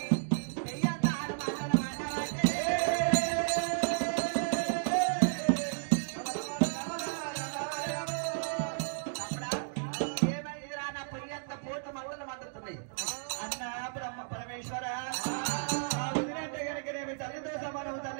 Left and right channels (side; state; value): left; silent; digital silence